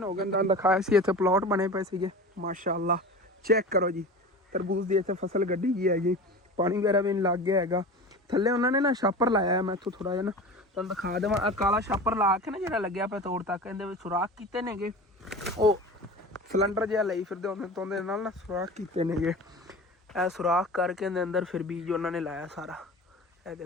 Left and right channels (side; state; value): both; normal; correlation 0.33